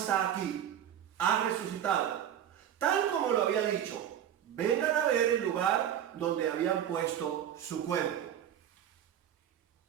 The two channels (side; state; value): left; quieter; 10.2 dB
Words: aquí, ha resucitado, tal como lo había dicho. Vengan a ver el lugar donde habían puesto su cuerpo.